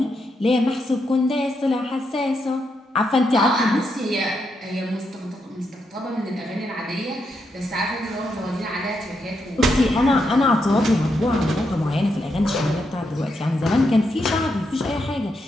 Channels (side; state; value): both; normal; correlation 0.81